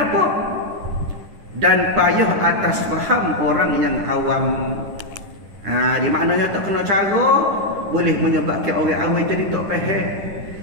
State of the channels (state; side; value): late; left; 10 ms